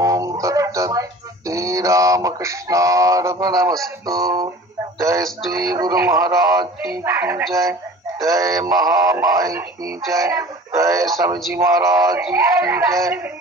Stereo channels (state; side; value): normal; both; correlation 0.43